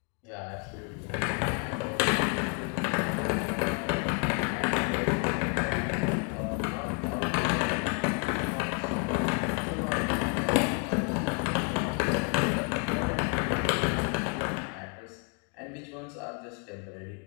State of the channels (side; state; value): right; quieter; 36.2 dB